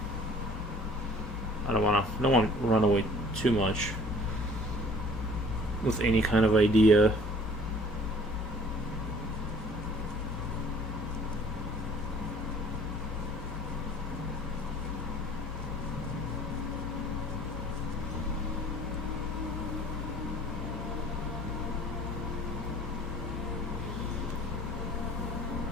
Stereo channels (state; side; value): normal; both; correlation 0.53